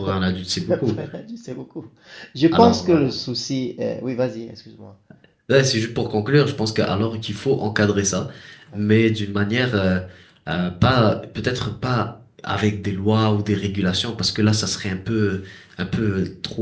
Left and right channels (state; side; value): identical; both; correlation 1.00